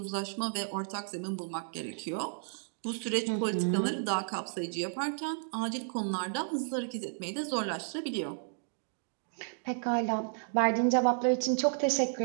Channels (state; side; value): silent; left; digital silence